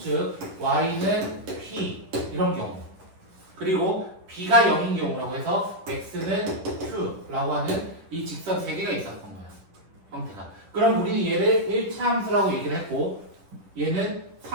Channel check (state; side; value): late; left; 10 ms